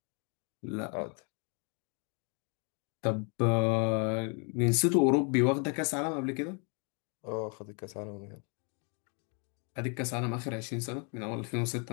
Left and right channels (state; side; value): quieter; right; 37.3 dB